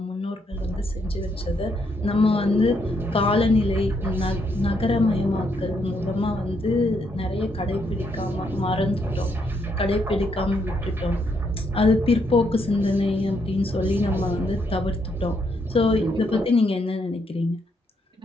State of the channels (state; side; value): normal; both; correlation 0.75